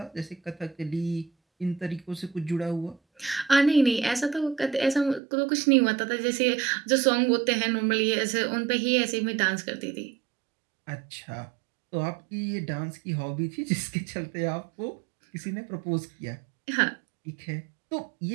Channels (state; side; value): drops out; left; at 5.2 s